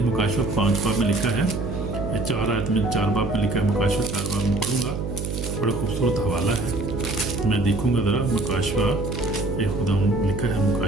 मुकाशवा 5 बाब में लिखा है, 4 आयत में 4 बाब में लिखा है, मुकाशवा 4 बाब में पढ़ूंगा, बड़ा खूबसूरत हवाला है। मैं देखूंगा ज़रा मुकाशवा खुदा लिखा है,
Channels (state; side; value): noise; right; hum, 5 dB below the sound